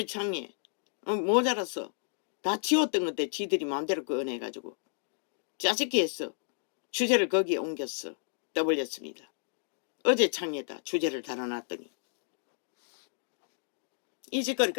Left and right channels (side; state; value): right; silent; digital silence